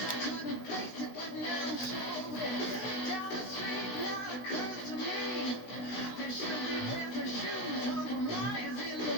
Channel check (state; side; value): late; right; 16 ms